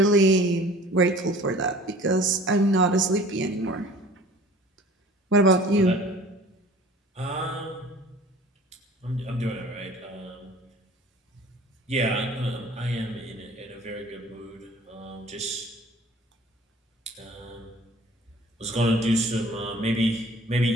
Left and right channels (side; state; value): both; normal; correlation 0.47